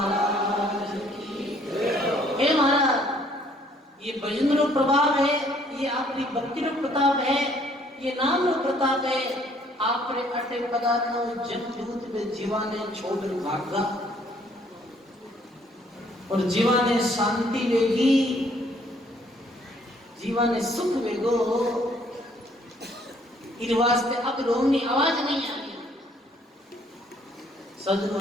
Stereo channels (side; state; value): both; normal; correlation 0.63